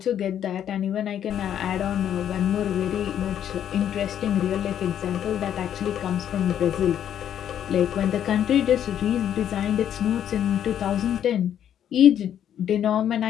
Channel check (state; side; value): quieter; right; 9.9 dB